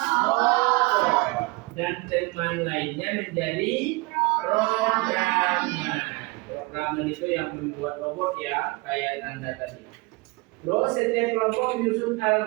robot dan teman lainnya menjadi programmer. Programmer itu yang membuat robot ya, kayak Anda tadi. Terus setiap kelompok menyusun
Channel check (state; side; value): quieter; left; 25.5 dB